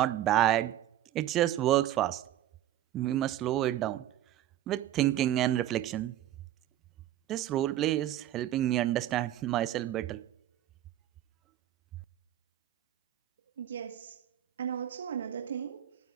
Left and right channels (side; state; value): left; quieter; 13.0 dB